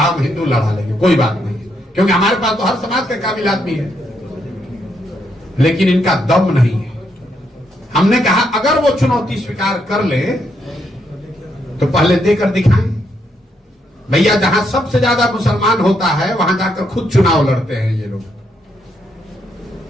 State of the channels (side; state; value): both; normal; correlation 0.77